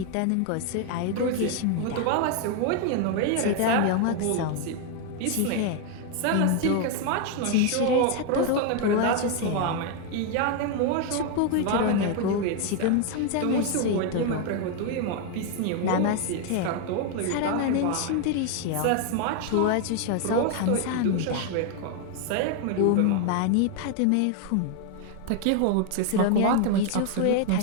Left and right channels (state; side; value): different; both; correlation 0.01